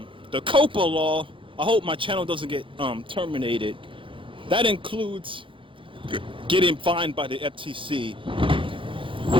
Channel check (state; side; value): late; left; 0.25 ms